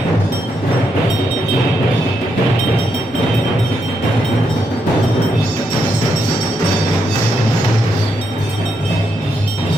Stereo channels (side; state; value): right; noise; rumble, 27 dB below the sound